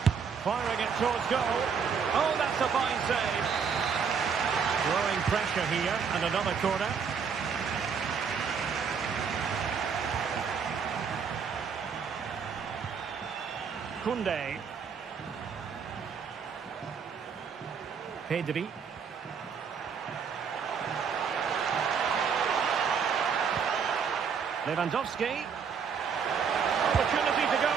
Firing it towards goal. Oh, that's a fine save. Growing pressure here, and another corner. Koundé. Pedri. Lewandowski. Opportunity to go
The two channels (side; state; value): left; quieter; 6.4 dB